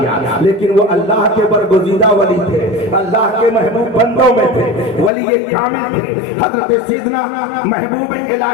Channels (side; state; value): right; drops out; at 5.1 s